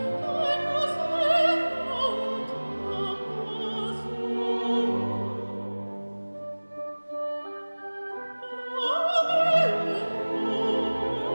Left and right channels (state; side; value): inverted; both; correlation -1.00